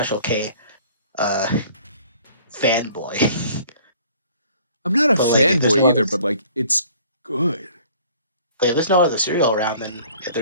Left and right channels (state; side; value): inverted; both; correlation -0.53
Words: K uh fanboy, I'm not a but like if there's fanboy no other either, but like it's good. like if there's no other cereal around, then if